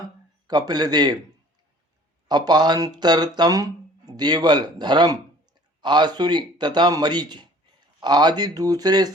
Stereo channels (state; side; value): normal; both; correlation 0.51